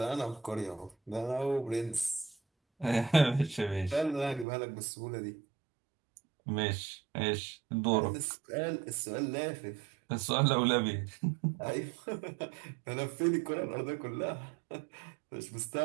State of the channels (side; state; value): left; drops out; at 4.5 s